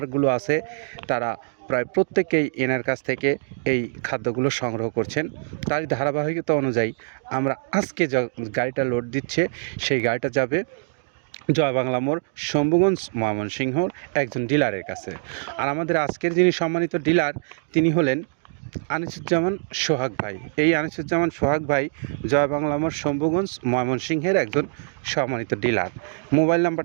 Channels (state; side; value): silent; left; digital silence